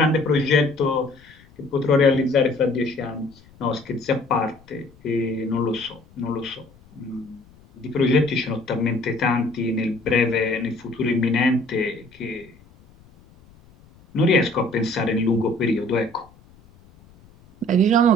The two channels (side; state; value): left; noise; rumble, 27 dB below the sound